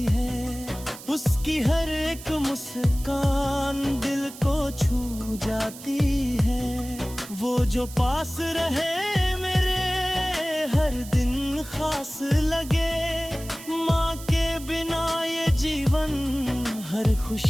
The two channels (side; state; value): right; noise; hiss, 15 dB below the sound